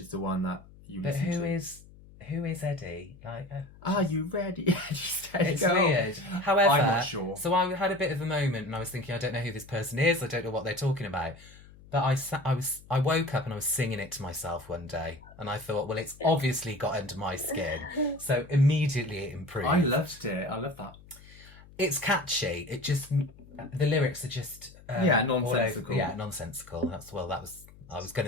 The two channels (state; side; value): noise; left; hum, 22 dB below the sound